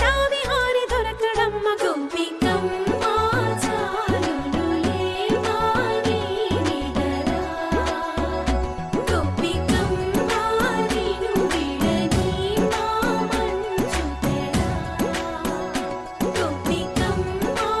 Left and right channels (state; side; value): identical; both; correlation 1.00